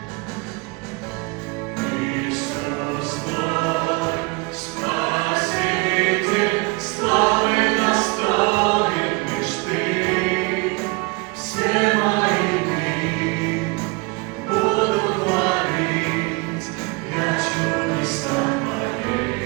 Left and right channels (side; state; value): left; quieter; 28.1 dB